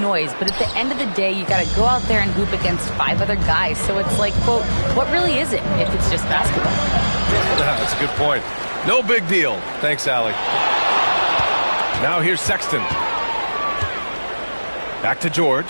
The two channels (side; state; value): both; inverted; correlation -1.00